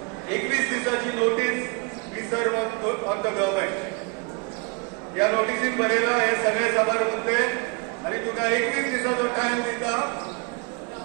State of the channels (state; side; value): quieter; left; 31.3 dB